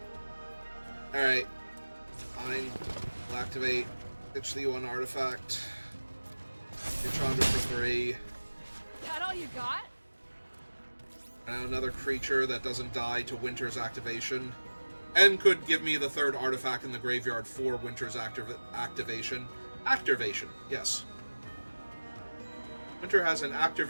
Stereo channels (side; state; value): both; inverted; correlation -1.00